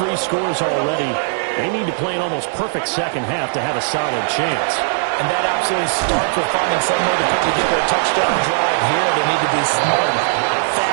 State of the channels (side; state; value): left; silent; digital silence